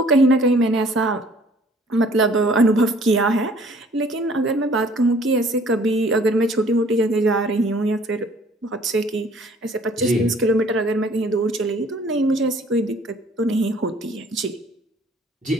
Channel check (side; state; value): both; normal; correlation 0.56